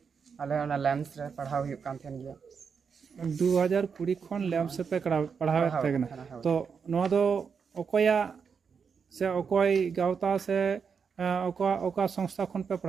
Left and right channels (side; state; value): left; quieter; 6.1 dB